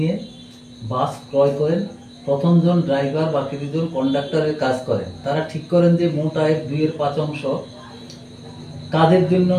বাস ক্রয় করেন। প্রথম জন ড্রাইভার, বাকি দুজন কন্ডাক্টরের কাজ করেন। তারা ঠিক করেন যে মোট আয়ের 2/5 অংশ কাজের জন্য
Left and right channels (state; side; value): identical; both; correlation 1.00